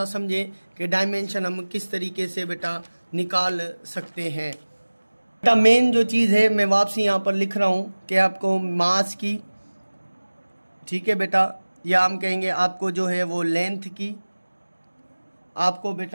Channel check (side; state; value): both; inverted; correlation -1.00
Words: समझें कि डायमेंशन हम किस तरीके से बेटा निकाल सकते हैं। बेटा मेन जो चीज़ है मैं वापसी यहाँ पर लिख रहा हूँ कि आपको मास की, ठीक है बेटा, या हम कहेंगे आपको जो है वो लेंथ की, आपको